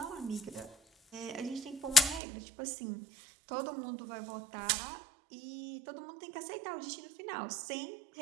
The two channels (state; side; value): drops out; left; at 2.2 s